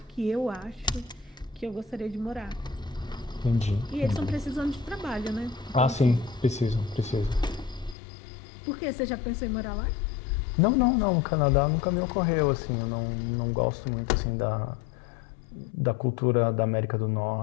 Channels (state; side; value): drops out; right; at 8.0 s